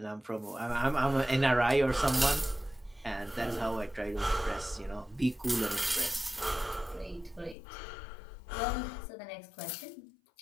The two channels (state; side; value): drops out; right; at 7.6 s